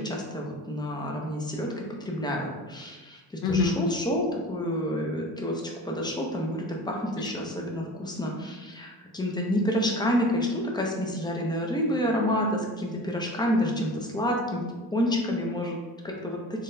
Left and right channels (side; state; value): both; normal; correlation 0.39